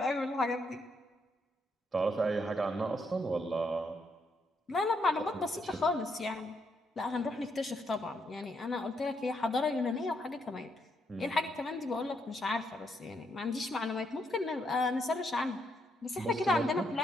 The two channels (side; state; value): both; normal; correlation 0.77